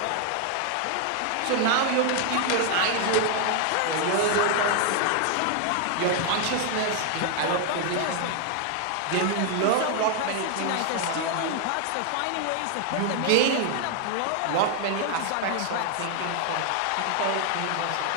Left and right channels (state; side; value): different; both; correlation 0.00